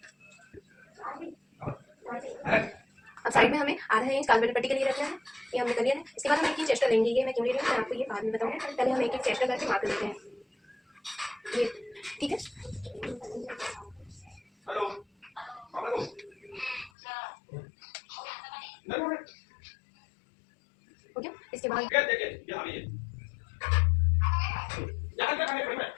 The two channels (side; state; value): right; drops out; at 16.9 s